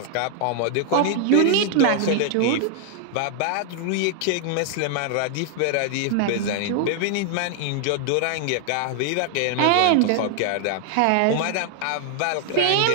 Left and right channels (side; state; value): both; different; correlation 0.00